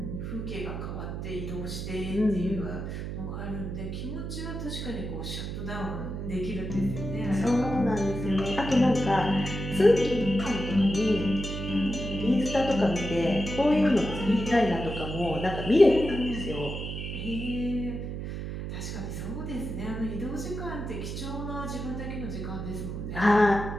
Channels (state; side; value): noise; right; hum, 5 dB below the sound